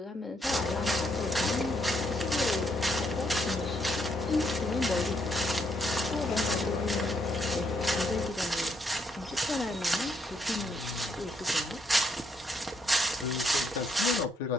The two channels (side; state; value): both; normal; correlation 0.74